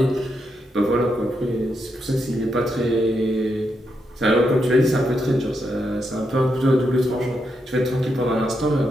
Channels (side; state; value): both; normal; correlation 0.82